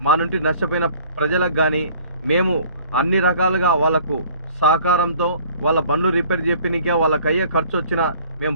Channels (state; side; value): inverted; both; correlation -0.53